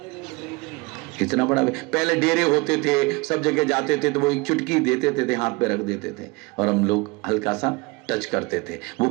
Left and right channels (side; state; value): left; quieter; 25.6 dB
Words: इतना बड़ा, पहले डेरे होते थे, सब जगह जाते थे तो वो 1 चुटकी देते थे, हाथ पे रख देते थे और हम लोग हल्का सा टच करते थे। वो